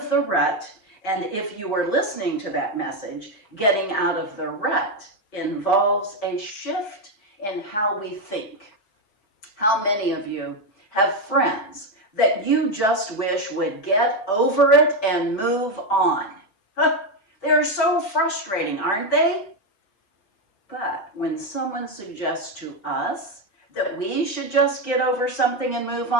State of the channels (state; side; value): late; right; 5.1 ms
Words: the rut, and if you were listening to that message, getting out of the rut involves a shift in how we think. How many of you have friends that you just wish would get over it and move on? They're so frustrating, aren't they? But when someone suggests to us that we should just get over something and move